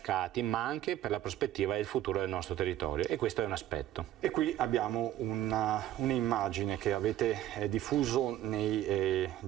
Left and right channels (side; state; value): left; quieter; 12.9 dB